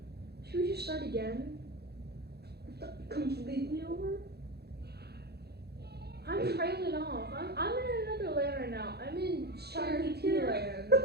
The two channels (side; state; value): left; late; 0.47 ms